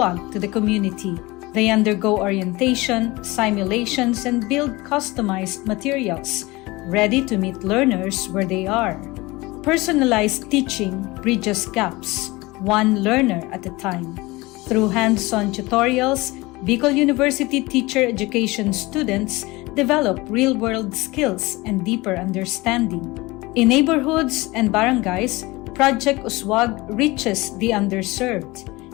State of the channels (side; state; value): right; quieter; 22.0 dB